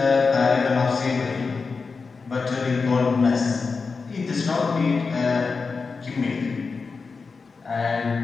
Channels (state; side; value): quieter; right; 4.6 dB